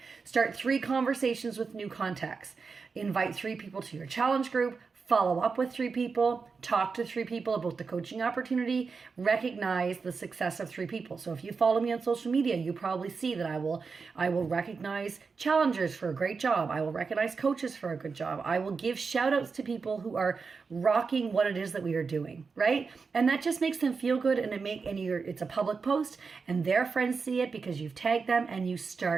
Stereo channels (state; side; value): quieter; left; 5.0 dB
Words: Start 3 conversations with new contacts. Invite 3 people to your challenge group. Follow up with 3 people, talk to 3 people about the coaching opportunity, recognize the success of 3 people. So if you follow me on social media, you probably see that I will recognize challengers for a great job. I will recognize coaches for a good job. I will give shout outs to people who are rocking what it is that we are doing, right? And that just makes them feel good, and it's a public post and their friends see it because you've tagged them, and you